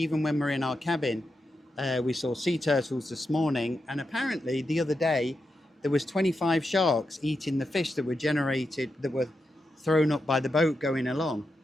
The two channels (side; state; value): both; normal; correlation 0.87